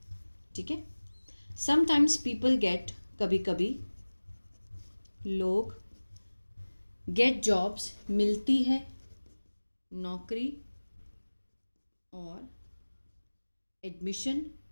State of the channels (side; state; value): both; inverted; correlation -1.00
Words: ठीक है, समटाइम्स पीपल गेट, कभी कभी लोग गेट जॉब्स, मिलती है नौकरी और एडमिशन,